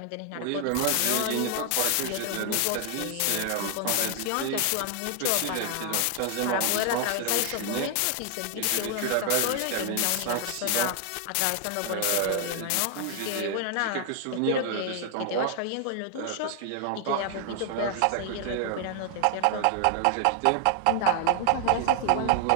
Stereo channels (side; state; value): both; different; correlation 0.00